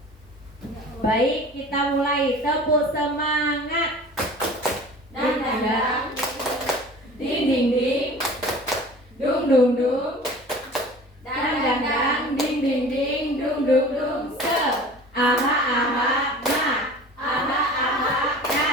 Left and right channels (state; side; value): normal; both; correlation 0.42